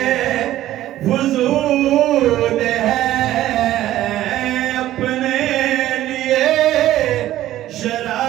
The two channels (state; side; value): quieter; left; 13.9 dB